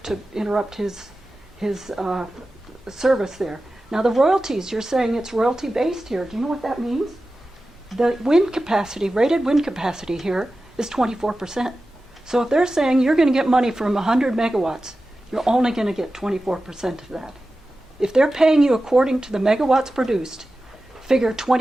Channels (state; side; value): normal; both; correlation 0.94